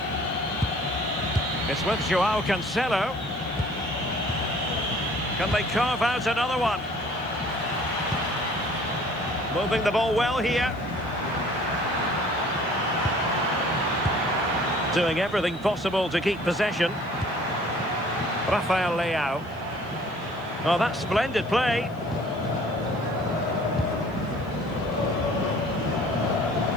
It's with Joao Cancelo. Can they carve out another one? Moving the ball well here. Doing everything possible to keep possession. Rafael Leao. Oh, that's splendid play.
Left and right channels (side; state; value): right; noise; hiss, 29 dB below the sound